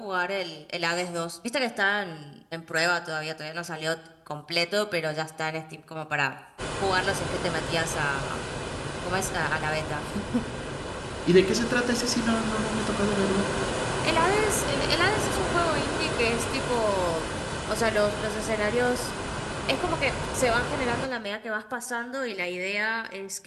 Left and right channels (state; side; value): identical; both; correlation 1.00